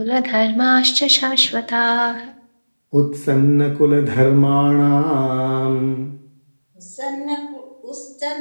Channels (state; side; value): inverted; both; correlation -1.00